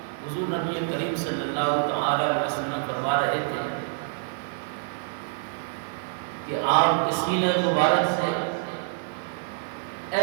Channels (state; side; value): silent; left; digital silence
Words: حضور نبی کریم صلی اللہ تعالی علیہ وسلم فرما رہے تھے کہ آپ کے سینہ مبارک سے